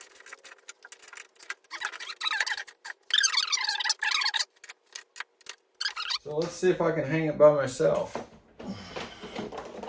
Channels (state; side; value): identical; both; correlation 1.00